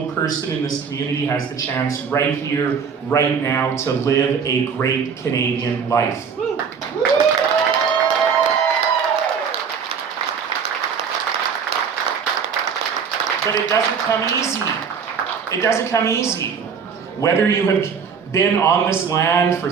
person in this community has the chance right here, right now, to live a great Canadian life. But it doesn't come easy. It doesn't come easy. Whether you have been on this land for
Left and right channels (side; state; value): left; quieter; 6.4 dB